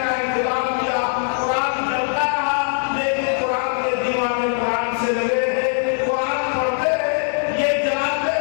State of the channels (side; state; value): right; silent; 65 dB below the other